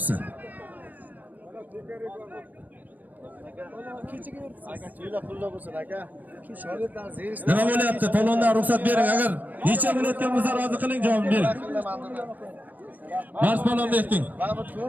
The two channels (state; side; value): late; left; 0.083 ms